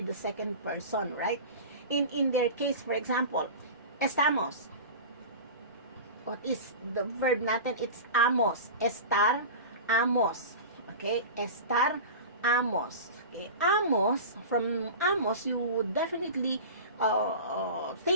the second person, right? In their case, for example, estamos. What is the verb natin? It's amos. Estar, amos. Okay? Estar, amos. Okay, amos, from amos, you would definitely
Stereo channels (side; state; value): both; inverted; correlation -0.31